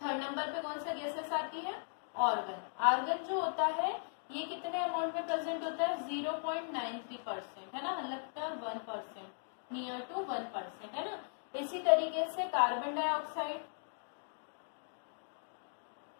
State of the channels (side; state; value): right; silent; digital silence